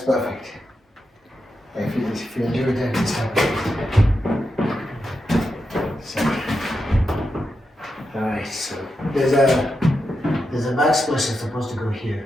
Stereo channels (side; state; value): both; normal; correlation 0.87